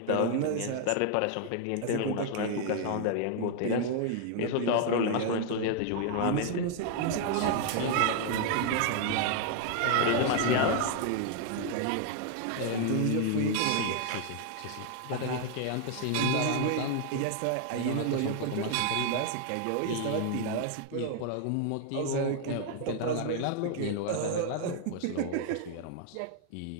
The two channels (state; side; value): different; both; correlation 0.00